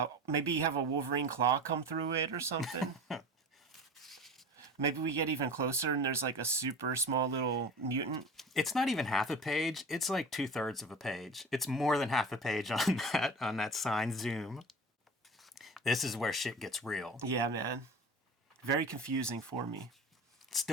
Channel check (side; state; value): both; normal; correlation 0.34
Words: Maybe have a Wolverine claw come through it or something. Maybe we get even closer and there's like a super small little mutant. It's not even half a page. It's like 2/3 of a page. It's more than half a page on that sign zoom. This is where shit gets real. Yeah, man. Very confusing for me.